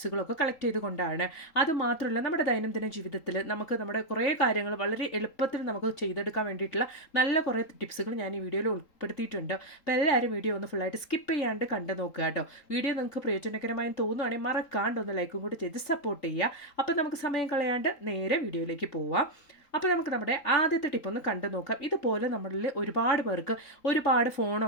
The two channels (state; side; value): late; right; 3.8 ms